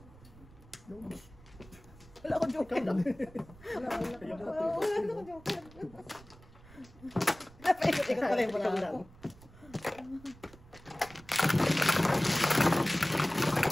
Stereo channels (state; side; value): noise; right; rumble, 22 dB below the sound